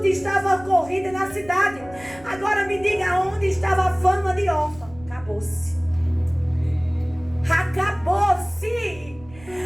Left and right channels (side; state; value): right; noise; rumble, 21 dB below the sound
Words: estava corrida na cidade. Agora me diga onde estava a fama de Orfa. Acabou-se. Acabou-se.